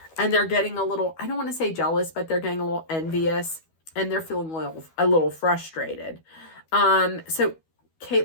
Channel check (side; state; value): right; late; 12 ms